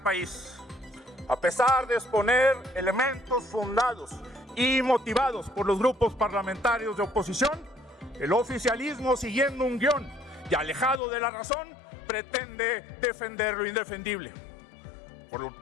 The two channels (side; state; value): right; drops out; at 11.0 s